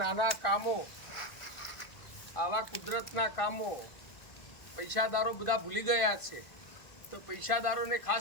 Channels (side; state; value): right; late; 1.5 ms